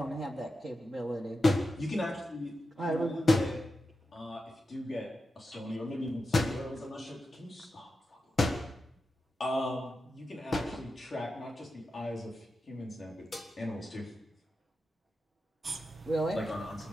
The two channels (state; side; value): normal; both; correlation 0.90